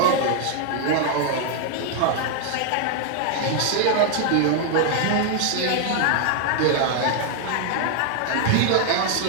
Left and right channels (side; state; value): both; different; correlation 0.00